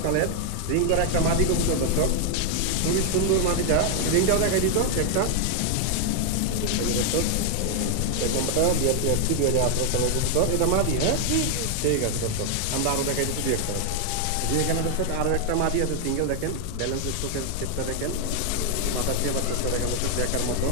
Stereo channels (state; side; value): different; both; correlation 0.00